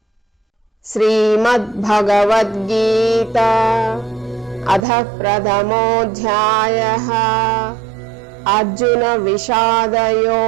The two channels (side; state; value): left; drops out; at 4.8 s